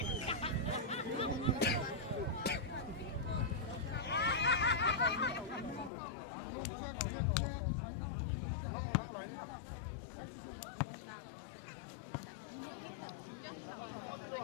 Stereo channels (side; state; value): right; drops out; at 5.9 s